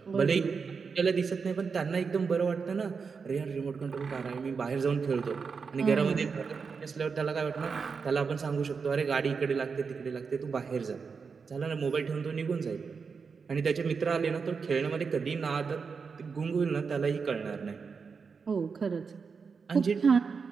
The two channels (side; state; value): left; quieter; 5.4 dB